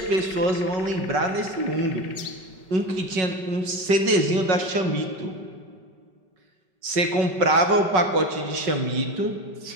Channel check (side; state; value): left; late; 5.4 ms